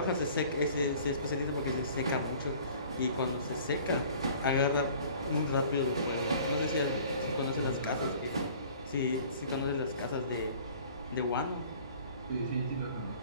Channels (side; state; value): both; inverted; correlation -0.49